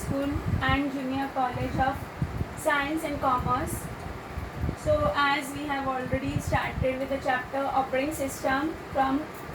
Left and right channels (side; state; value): both; identical; correlation 1.00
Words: and Junior College of Science and Commerce. So as we have already started with the chapter Operating System from